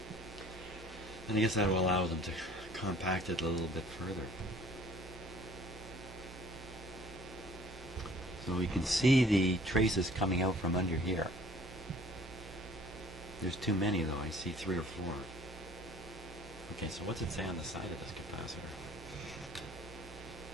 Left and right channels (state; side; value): normal; both; correlation 0.54